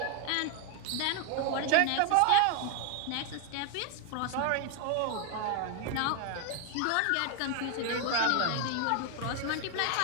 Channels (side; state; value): both; different; correlation 0.01